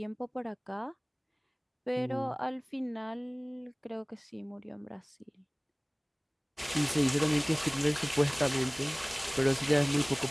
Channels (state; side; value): identical; both; correlation 1.00